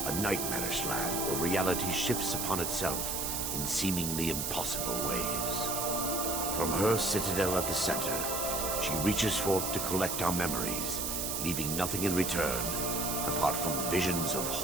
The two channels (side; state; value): right; noise; hiss, 1 dB below the sound